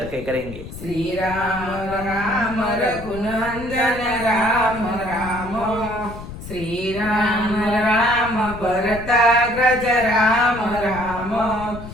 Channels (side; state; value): left; noise; rumble, 12 dB below the sound